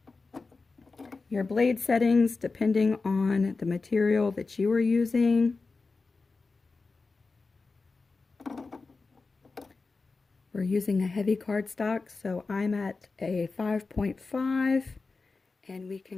your blade settings depending on the material that you are using. We're using a heavy cardstock, so I'm at a 5.5, and we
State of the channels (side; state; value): right; quieter; 4.0 dB